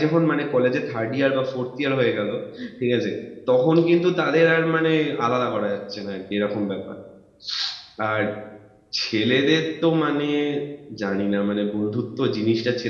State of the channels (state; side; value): identical; both; correlation 1.00